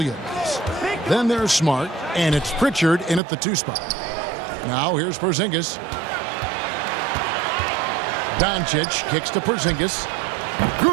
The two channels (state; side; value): drops out; left; at 3.2 s